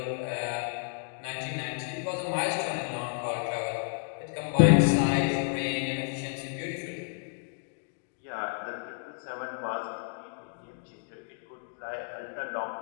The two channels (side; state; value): right; silent; 57 dB below the other